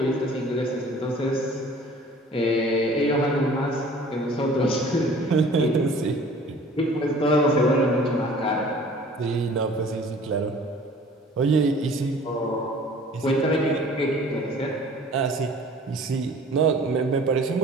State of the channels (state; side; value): normal; both; correlation 0.49